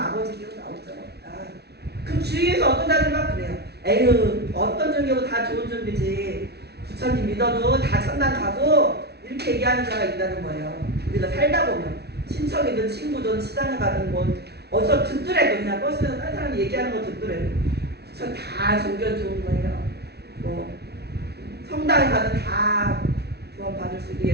나올 자가 없다. 그 주위에서 어떤 자들만 그래요. 에휴 어떤 종교고 다 좋은 종교지. 부처님 믿어도 다 천당 가고 이렇게 얘기하는 자가 있다는 거예요. 우리가 살다 보면 친척이든 친구든 시장에 가든 뭐 어디서 듣더라도 그냥 버스에서 다른 사람이 얘기하는 거 듣더라도 전 다 종교 좋은 거예요. 뭐 성당에 가든 다 구원 받을 수 있게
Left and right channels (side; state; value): left; late; 0.48 ms